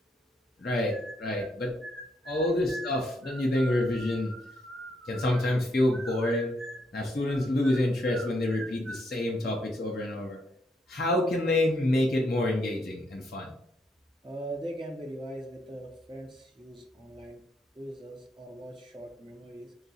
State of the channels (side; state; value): both; normal; correlation 0.76